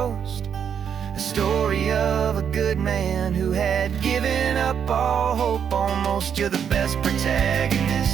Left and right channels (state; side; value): quieter; left; 7.9 dB